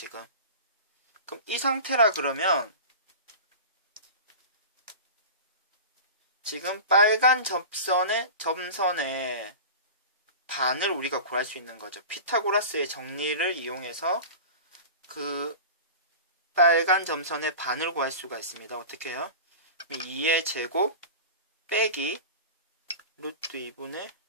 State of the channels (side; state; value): both; inverted; correlation -0.33